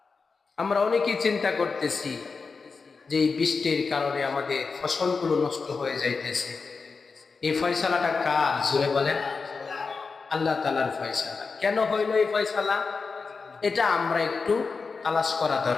আমরা অনেকেই চিন্তা করতেছি যে এই বৃষ্টির কারণে আমাদের ফসলগুলো নষ্ট হয়ে যাইতেছে। এই ফয়সালাটা কার? জোরে বলেন আল্লাহ তাআলার ফয়সালা। কেন হইল এই ফয়সালা? এটা আমরা একটু তালাশ করা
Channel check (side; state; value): right; quieter; 4.7 dB